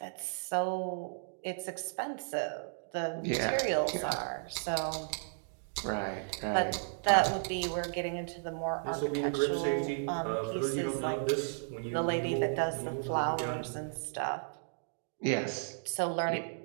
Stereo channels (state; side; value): silent; left; digital silence